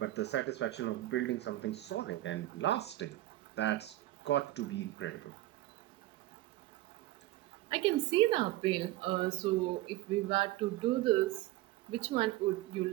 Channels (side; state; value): left; quieter; 16.4 dB